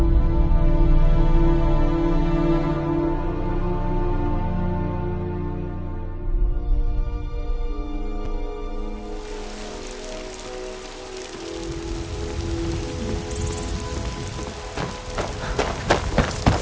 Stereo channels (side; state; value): both; identical; correlation 1.00